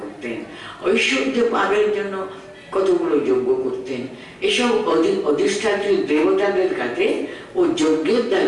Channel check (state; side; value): identical; both; correlation 1.00